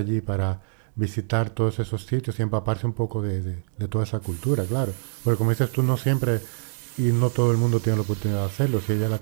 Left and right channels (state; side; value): silent; left; 62 dB below the other